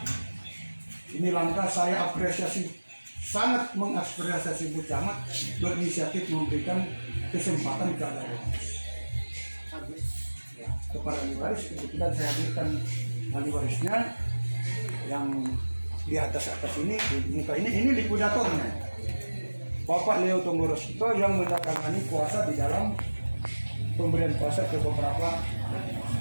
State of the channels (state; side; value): inverted; both; correlation -1.00